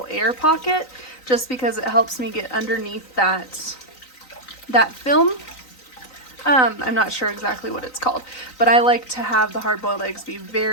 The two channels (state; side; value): late; right; 3.9 ms